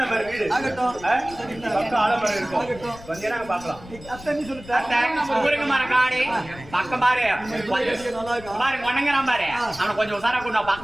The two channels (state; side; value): noise; left; rumble, 18 dB below the sound